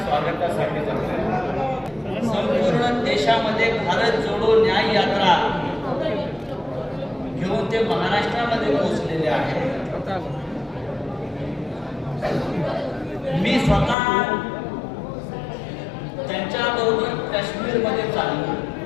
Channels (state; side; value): drops out; right; at 14.0 s